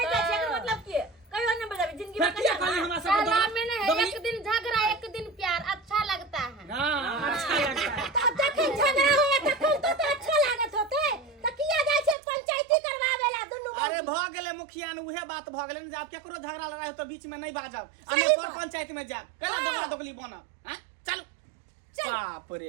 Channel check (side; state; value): left; drops out; at 12.2 s